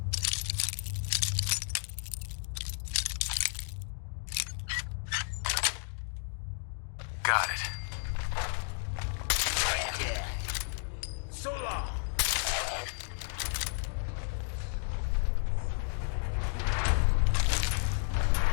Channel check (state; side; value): silent; right; digital silence